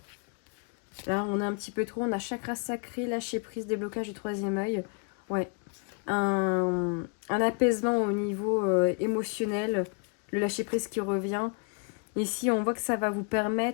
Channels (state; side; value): quieter; right; 38.2 dB